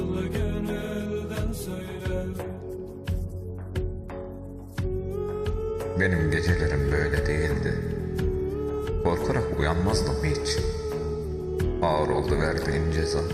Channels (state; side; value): identical; both; correlation 1.00